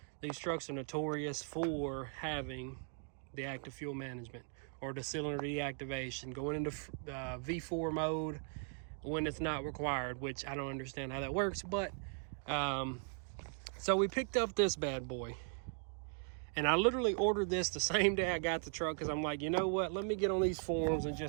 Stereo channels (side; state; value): left; silent; 52 dB below the other